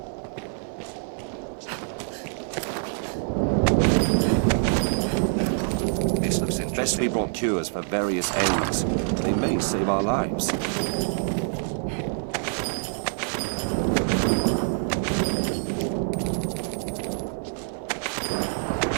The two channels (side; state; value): left; silent; 61 dB below the other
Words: This looks interesting. We brought cures for various ailments. They may save our lives.